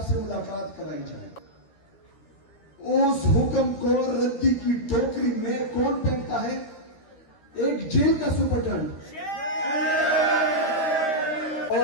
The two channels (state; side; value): late; right; 13 ms